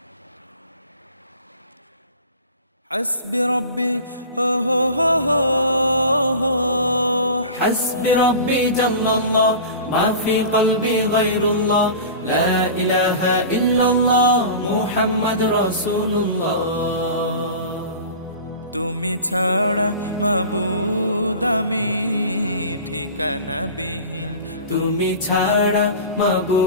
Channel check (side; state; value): both; inverted; correlation -0.35